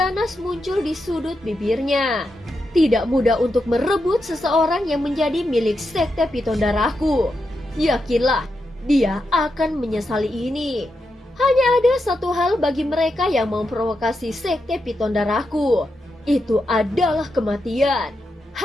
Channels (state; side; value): normal; both; correlation 0.86